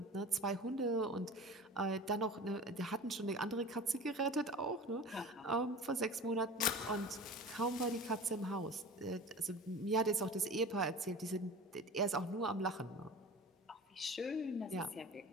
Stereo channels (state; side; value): normal; both; correlation 0.36